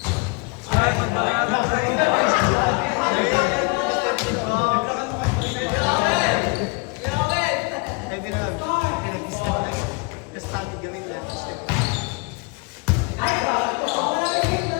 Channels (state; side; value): quieter; right; 30.6 dB